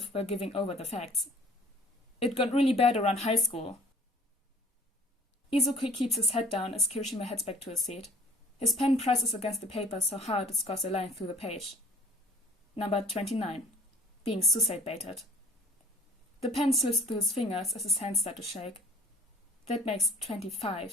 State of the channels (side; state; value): both; normal; correlation 0.51